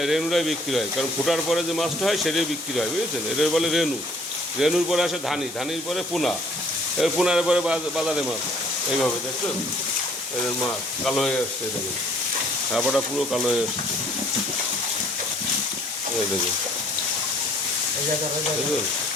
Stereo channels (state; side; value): normal; both; correlation 0.59